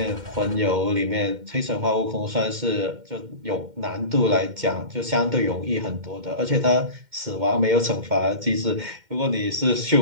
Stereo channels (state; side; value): late; left; 2.1 ms